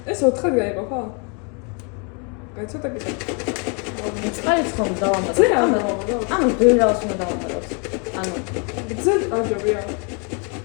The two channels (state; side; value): quieter; right; 36.2 dB